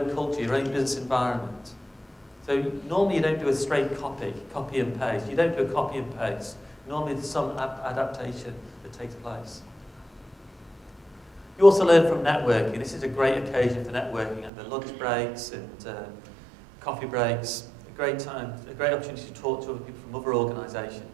culture, your own business environment. So normally you don't do a straight copy and paste. You don't do a copy and paste. Normally there's some adaptation that takes place. You also learn from networking. This is a great occasion for networking at the lunch breaks and coffee breaks. A great time, a great opportunity to talk to other people from other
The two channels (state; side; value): drops out; left; at 14.5 s